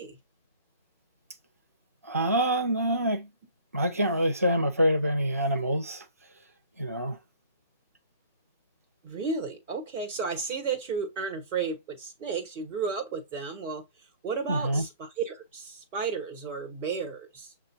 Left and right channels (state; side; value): inverted; both; correlation -0.48